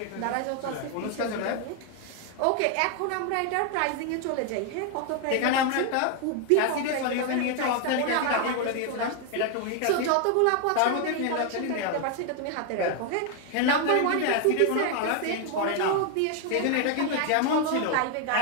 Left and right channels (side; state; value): both; different; correlation 0.01